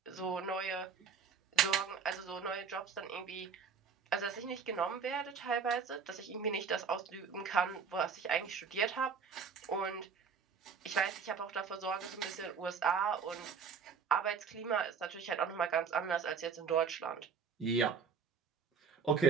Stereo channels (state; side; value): quieter; left; 6.1 dB